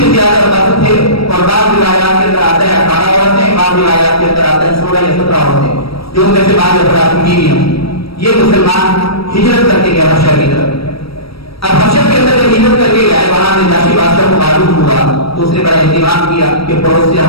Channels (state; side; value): late; right; 0.76 ms